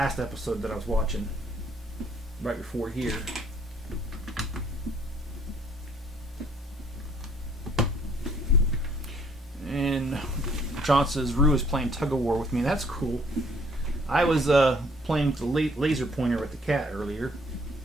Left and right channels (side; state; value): both; normal; correlation 0.62